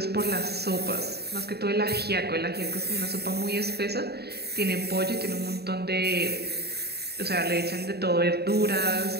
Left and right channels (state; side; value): late; left; 0.47 ms